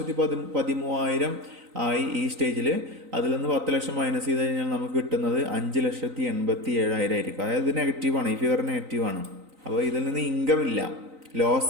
ആയി ഈ സ്റ്റേജിൽ. അതിൽ നിന്ന് 10 ലക്ഷം മൈനസ് ചെയ്ത് കഴിഞ്ഞാൽ നമുക്ക് കിട്ടുന്നത് 5,87,000 ആയിരിക്കും. അതായത് ഇത് നെഗറ്റീവാണ്, ഈ ഫിഗർ നെഗറ്റീവാണ്. അപ്പോൾ ഇതിൽ നിന്ന് ഇൻകം ഇല്ല,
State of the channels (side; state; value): left; late; 3.9 ms